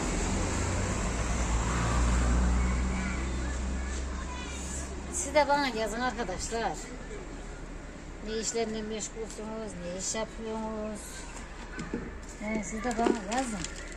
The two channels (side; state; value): both; identical; correlation 1.00